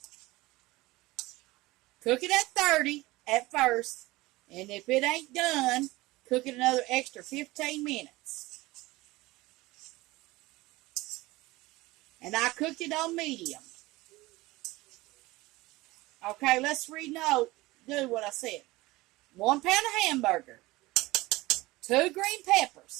Cook it at 30 at first. And if it ain't done, Cook it another extra 15 minutes. And I cooked it on medium. Okay, let's do what I said. 1 pound of hamburger, 2 green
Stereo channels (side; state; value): left; quieter; 20.1 dB